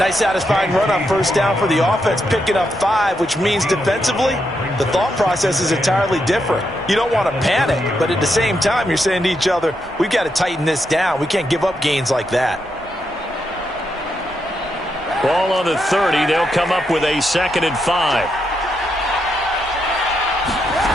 satisfying run on first down for the offense, picking up 5, which means defensively, the thought process is entirely different. You don't want to panic, but at the same time, you're saying to each other, we've got to tighten this down. We can't give up gains like that. Ball on the 30. They'll come up with a 2nd and 5.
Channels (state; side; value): normal; both; correlation 0.81